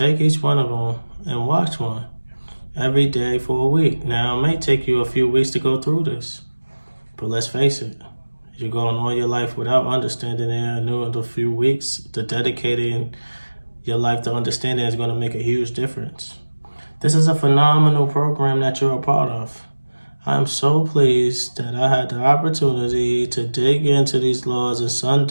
each one of them and watch one every day for a week. Now, it may take you a few weeks to go through this, but let's face it, you're going all your life without understanding it. I knew in a few weeks, the dedicating your life to understanding is going to make a huge difference. This is a phenomenal program that you're a part of. I'm so pleased that I had the opportunity to dig into these laws in some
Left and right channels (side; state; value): both; inverted; correlation -1.00